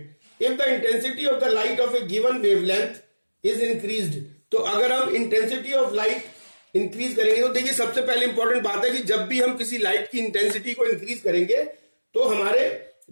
If the intensity of the light of a given wavelength is increased, तो अगर हम intensity of light increase करेंगे, तो देखिए सबसे पहले important बात है कि जब भी हम किसी लाइट की इंटेंसिटी को इंक्रीज करेंगे तो हमारे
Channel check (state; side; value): inverted; both; correlation -1.00